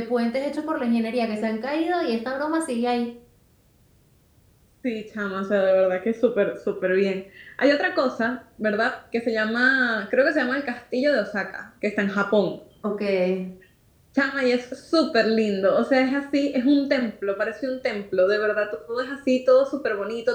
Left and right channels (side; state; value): both; identical; correlation 1.00